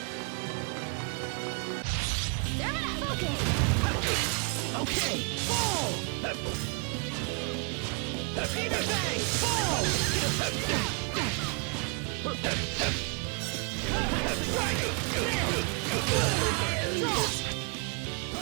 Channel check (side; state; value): left; quieter; 35.8 dB